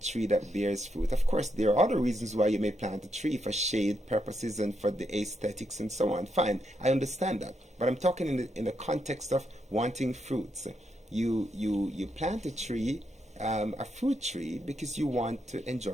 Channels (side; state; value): both; normal; correlation 0.80